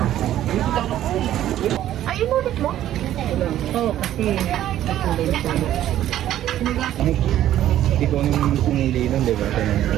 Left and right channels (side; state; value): left; quieter; 12.4 dB